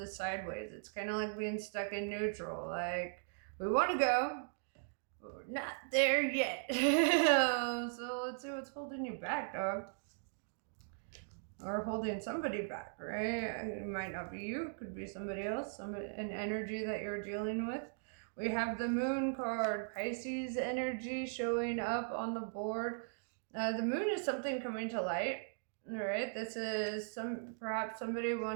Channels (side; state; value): left; silent; digital silence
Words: sideways. It's kind of like being stuck in neutral. Like, we want to go, but we're not there yet. So let's see what's holding you back, dog. Or holding somebody back, right? It might not be you, could be somebody else, an energy that you're dealing with. We have the Moon card, Pisces energy showing up on the board. The moon is something coming to light, right? This is perhaps somebody